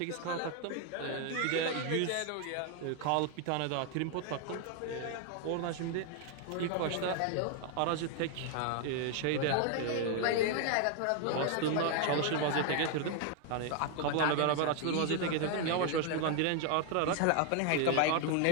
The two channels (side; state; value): both; different; correlation 0.00